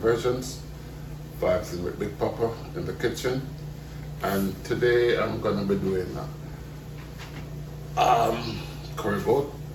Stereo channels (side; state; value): both; identical; correlation 1.00